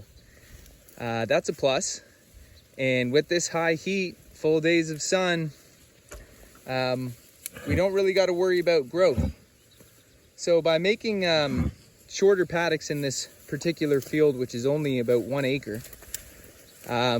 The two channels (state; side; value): identical; both; correlation 1.00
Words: that's a plus. And with this high heat, full days of sun, we don't really got to worry about growth. So by making shorter paddocks in this particular field, which is only about 1 acre,